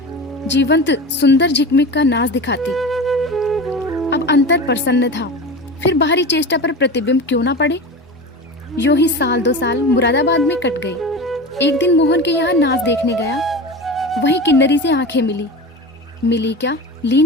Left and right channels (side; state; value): both; normal; correlation 0.29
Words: सुंदर झिकमिक का नाच दिखाती। अब अंतर प्रसन्न था, फिर बाहरी चेष्टा पर प्रतिबिंब क्यों ना पड़े। यूं ही साल 2 साल मुरादाबाद में कट गई। एक दिन मोहन के यहाँ नाच देखने गया। वहीं किन्नरी से आंखें मिली क्या,